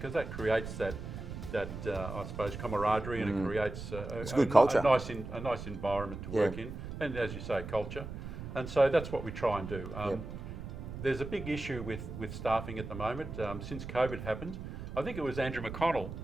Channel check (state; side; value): noise; right; rumble, 8 dB below the sound